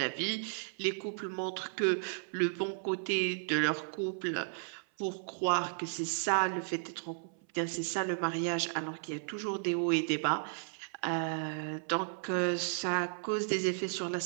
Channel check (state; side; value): silent; left; 55 dB below the other